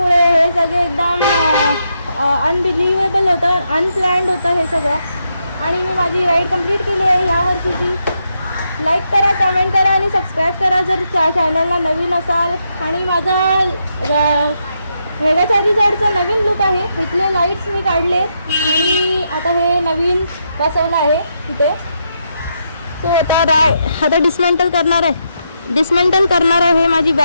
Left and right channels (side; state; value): both; inverted; correlation -0.81